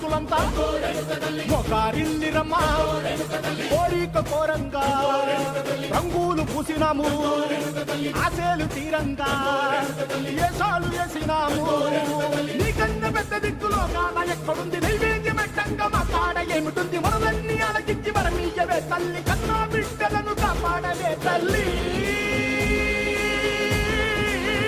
మొగారిల్లిరమ్మా కోరిక కోరంగా రంగులు పూసినాము ఆశలు తీరంగా ఏసాలు వేసినాము నీకన్నా పెద్ద దిక్కులో కాన ఎక్కడుంది నైవేద్యం ఎట్టంగా మా కాడ ఏమిటుంది మనలన్నీ అలకించి మరమీయవే తల్లి కన్నా బిడ్డలను కాపాడవే తల్లి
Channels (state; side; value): identical; both; correlation 1.00